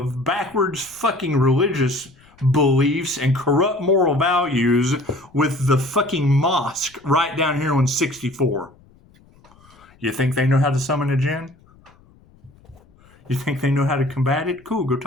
backwards fucking religious beliefs and corrupt moral values, with the fucking mosque right down here on 64. You think they know how to summon a jinn? You think they know how to combat it? Cool, go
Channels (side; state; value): left; noise; rumble, 29 dB below the sound